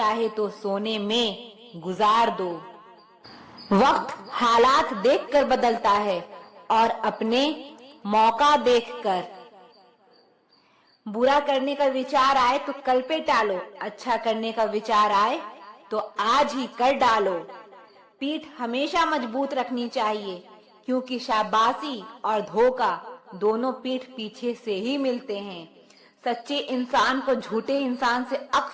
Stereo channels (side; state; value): both; identical; correlation 1.00